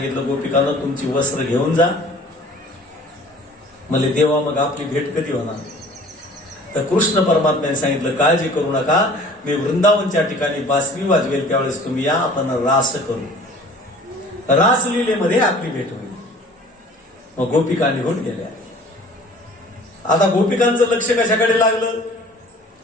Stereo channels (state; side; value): normal; both; correlation 0.48